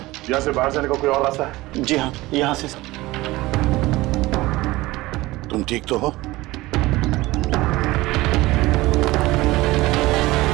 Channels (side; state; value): left; quieter; 19.3 dB